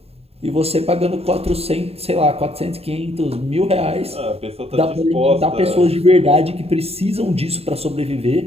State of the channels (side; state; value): left; late; 0.29 ms